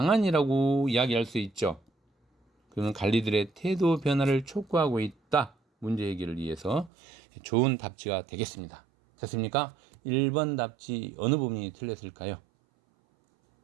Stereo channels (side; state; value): left; drops out; at 6.9 s